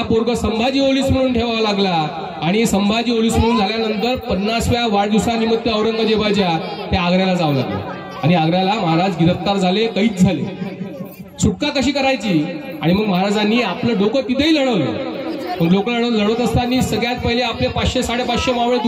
पोरग संभाजी ओलीस म्हणून ठेवावा लागला. आणि संभाजी ओलीस म्हणून झाल्यानंतर 50व्या वाढदिवसानिमित्त औरंगजेबाच्या त्या आग्र्याला जावं लागलं. आणि आग्र्याला महाराज गिरफ्तार झाले, कैद झाले. सुटका कशी करायची? आणि मग महाराजांनी आपलं डोकं तिथेही लढवलं. पण लोक लढवत असताना सगळ्यात पहिले आपले 500-550 मावळे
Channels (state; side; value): identical; both; correlation 1.00